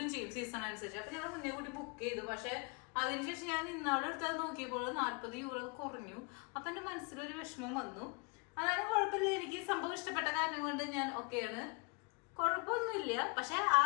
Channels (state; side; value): quieter; right; 33.5 dB